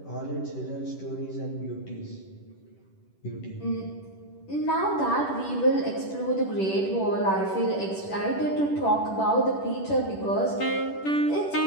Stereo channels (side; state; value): right; late; 10 ms